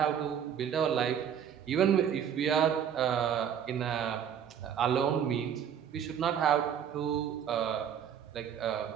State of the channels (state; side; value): quieter; left; 8.6 dB